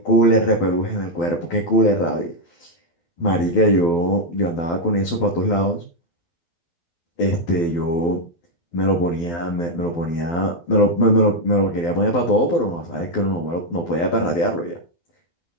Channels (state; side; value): late; right; 12 ms